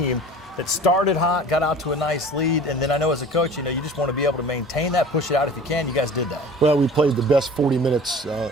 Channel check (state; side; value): normal; both; correlation 0.43